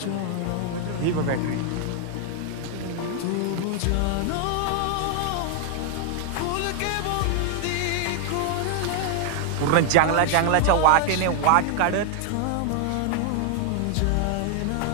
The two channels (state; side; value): different; both; correlation 0.00